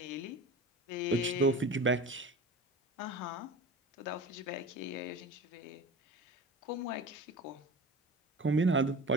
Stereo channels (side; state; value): both; normal; correlation 0.34